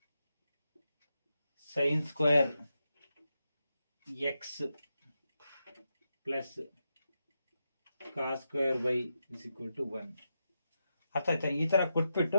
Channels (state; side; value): inverted; both; correlation -0.86